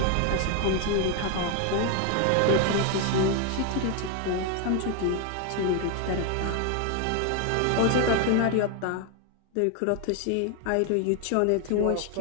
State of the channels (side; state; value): both; different; correlation 0.01